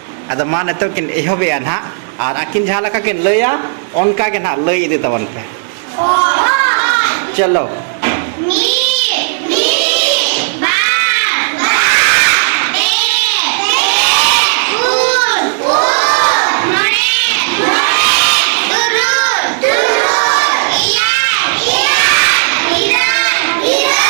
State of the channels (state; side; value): silent; left; digital silence